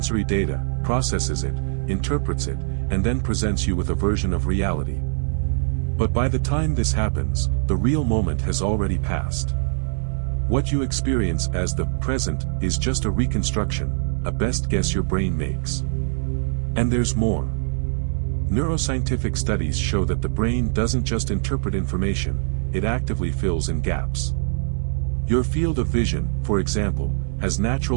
data, processes it, interprets it, and then presents you with a version of reality. But by the time this happens, the real moment has already passed. What you experience as the present is just a reconstruction, a best guess your brain makes. And there's more. Neuroscientific studies show that the brain doesn't just interpret information, it actively fills in gaps. Your field of vision, for example, has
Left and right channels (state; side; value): silent; left; 64 dB below the other